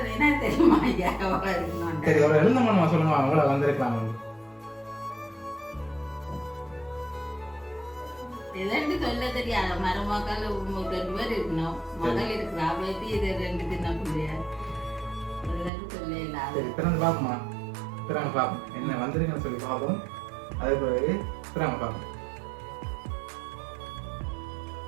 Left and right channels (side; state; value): left; drops out; at 15.7 s